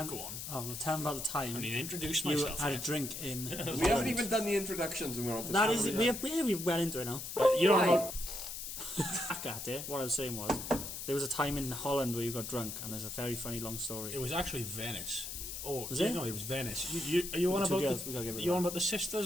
go on. Oh, well, tell them about the time I mean, introduce you myself. had a yet. drink in. We haven't even done the introductions and we're on to That is, we're well into it now. You don't know. Back at it. What I was saying was, there was a time in Holland where you got drunk, and there's a very funny long story. It was actually Venice. Oh, Was it? No, it was Venice. Are you on The two about girls, we gotta give it you that. on about the sisters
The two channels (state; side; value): noise; left; hiss, 7 dB below the sound